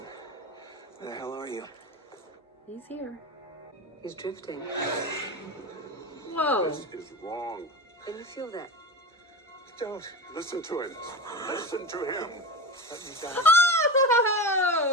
where the hell are you? He's here. He's drifting. Whoa. This is wrong. Can you feel that? Don't Listen to him. Listen to him. let me die.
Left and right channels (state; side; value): normal; both; correlation 0.26